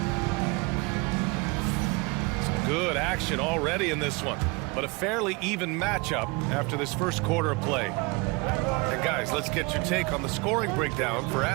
Some good action already in this one, but a fairly even matchup after this first quarter of play. And guys, let's get your take on the scoring breakdown for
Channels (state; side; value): quieter; left; 27.2 dB